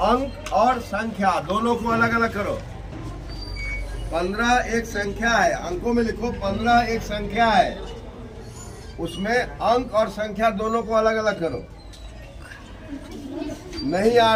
अंक और संख्या दोनों को अलग अलग करो। 15 एक संख्या है, अंकों में लिखो। 15 एक संख्या है, उसमें अंक और संख्या दोनों को अलग अलग करो। नहीं आ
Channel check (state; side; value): identical; both; correlation 1.00